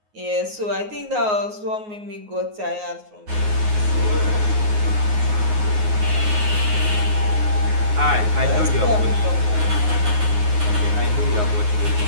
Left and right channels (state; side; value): late; left; 9.5 ms